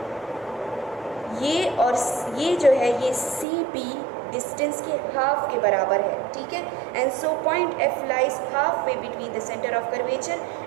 ये और ये जो है ये सी पी डिस्टेंस के हाफ के बराबर है, ठीक है। And so point F lies half way between the centre of curvature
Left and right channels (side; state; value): left; drops out; at 3.5 s